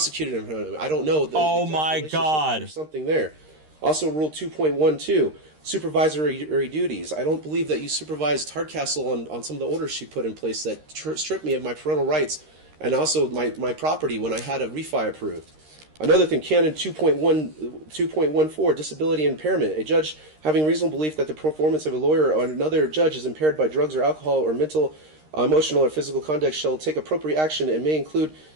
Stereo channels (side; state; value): left; late; 13 ms